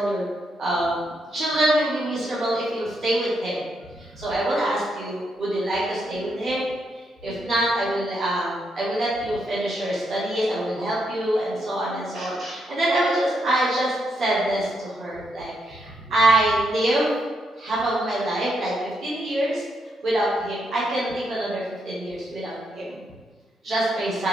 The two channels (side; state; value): both; normal; correlation 0.79